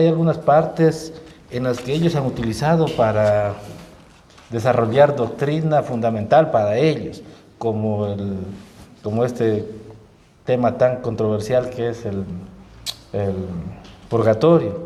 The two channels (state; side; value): identical; both; correlation 1.00